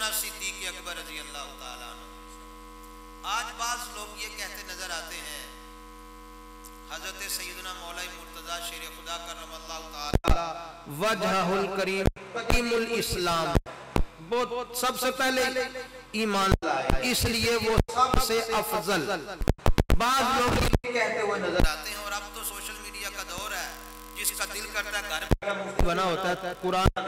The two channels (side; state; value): both; identical; correlation 1.00